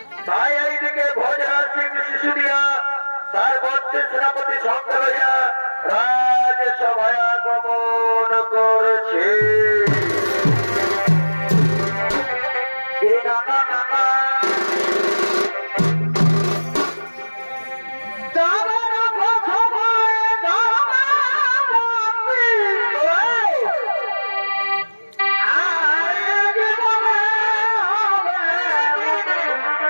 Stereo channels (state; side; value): inverted; both; correlation -1.00